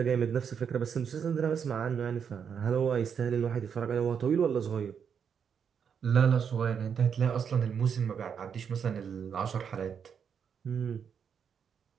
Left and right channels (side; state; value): left; quieter; 7.2 dB